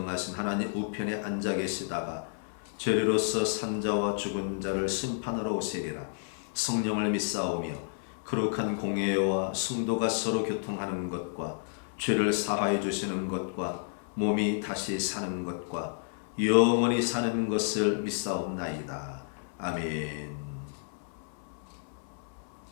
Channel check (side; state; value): right; silent; 57 dB below the other